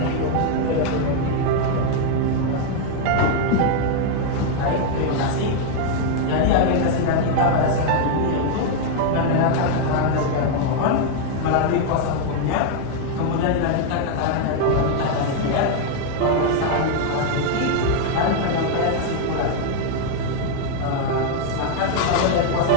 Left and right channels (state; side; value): different; both; correlation 0.00